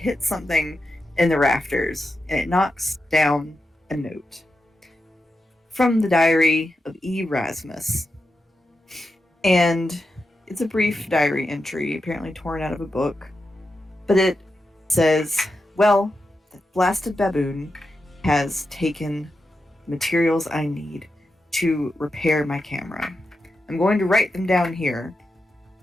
something in the rafters, and it knocks down a note from the diary of E. Rasmus. And it's a brief diary entry, apparently torn out of a book, but it says, well, the blasted baboon has taken materials I need to repair my camera. I'm going to write them down here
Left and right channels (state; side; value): normal; both; correlation 0.88